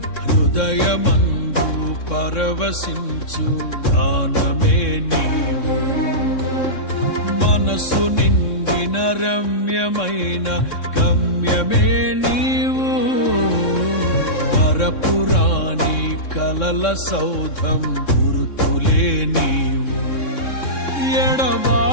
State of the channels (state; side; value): late; right; 3.6 ms